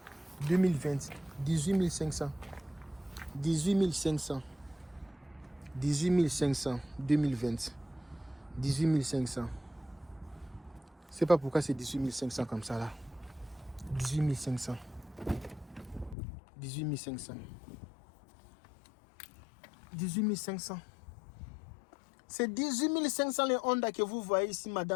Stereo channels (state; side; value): drops out; right; at 16.2 s